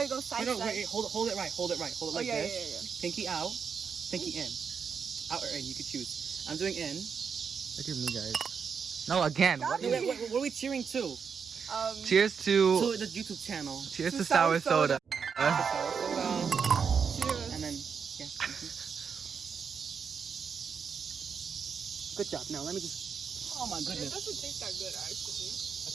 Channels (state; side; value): quieter; left; 6.4 dB